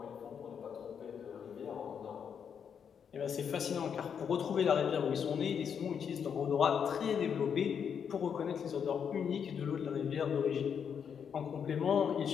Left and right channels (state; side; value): quieter; right; 7.4 dB